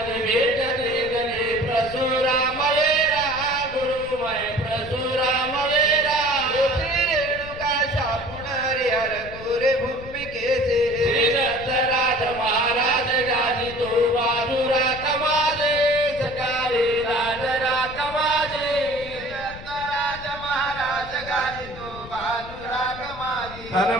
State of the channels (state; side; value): noise; left; rumble, 15 dB below the sound